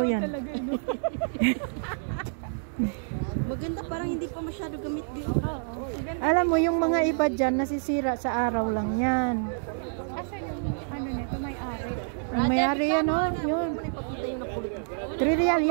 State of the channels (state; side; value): silent; left; 58 dB below the other